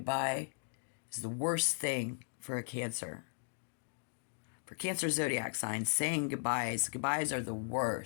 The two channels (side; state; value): right; silent; digital silence